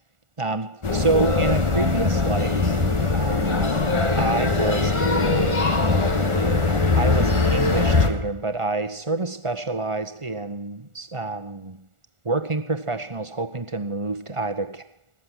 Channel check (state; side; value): late; left; 1.4 ms